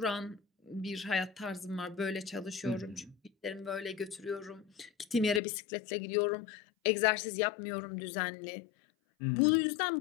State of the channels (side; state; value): right; drops out; at 5.4 s